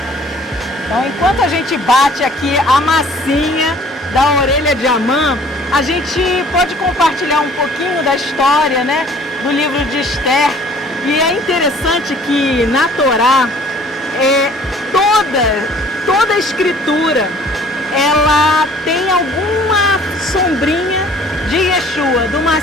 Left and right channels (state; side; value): normal; both; correlation 0.53